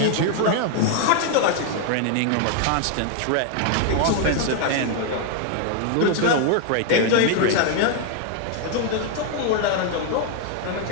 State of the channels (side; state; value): both; different; correlation 0.00